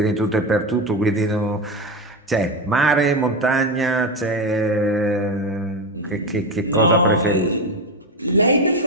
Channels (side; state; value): both; normal; correlation 0.16